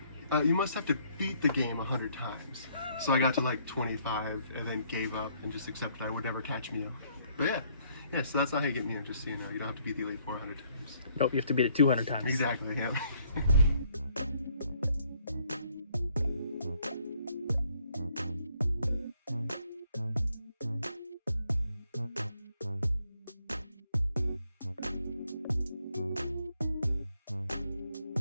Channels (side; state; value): both; inverted; correlation -0.67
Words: you must have to beat the game 100 times. So I got to like 25 and then gave up and just accepted I would never catch Mew. But yeah, so that's not how you get Mew, just so you know. You don't have to beat the Elite Four 100 times. Nope, you have to beat it 200 times. Exactly, yeah.